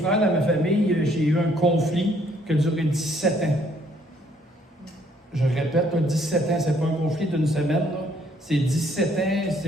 dans ma famille, j'ai eu un conflit qui a duré 17 ans. Je répète, 17 ans, c'est pas un conflit d'une semaine, là. C'est 17 ans,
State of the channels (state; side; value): normal; both; correlation 0.66